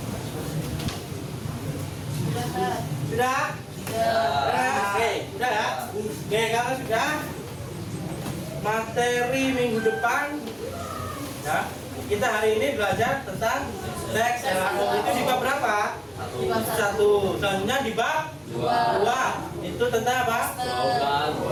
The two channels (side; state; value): both; identical; correlation 1.00